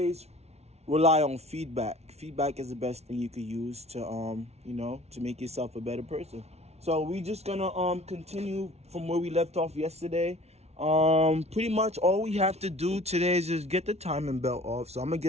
rely on feedback. Feedback is the best thing you could use to you know, to make yourself a better person. So we just gonna continue from where we left off yesterday. Pretty much all we have to do today is just get the timing belt off. So I'm gonna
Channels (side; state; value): left; late; 0.31 ms